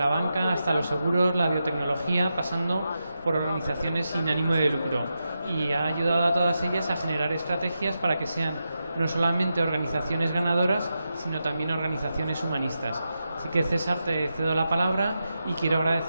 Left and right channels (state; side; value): inverted; both; correlation -0.88